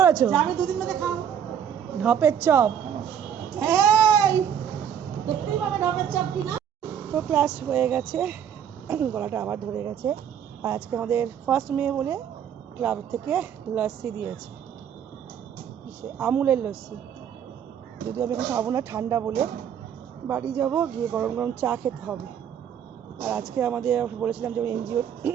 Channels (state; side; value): quieter; left; 8.8 dB